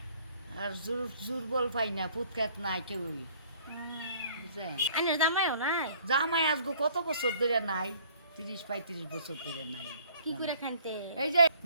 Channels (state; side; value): inverted; both; correlation -0.57